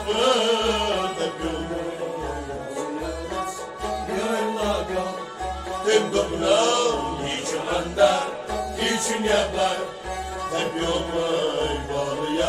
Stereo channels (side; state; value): both; identical; correlation 1.00